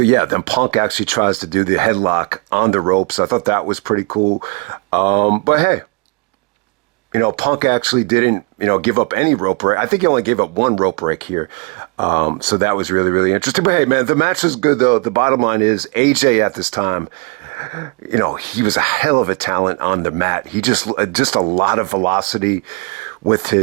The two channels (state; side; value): quieter; left; 30.0 dB